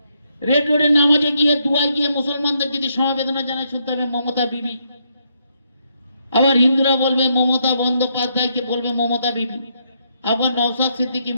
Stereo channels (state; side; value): inverted; both; correlation -0.75